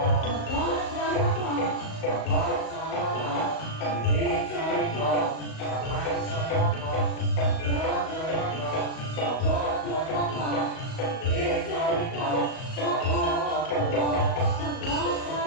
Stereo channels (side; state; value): right; late; 38 ms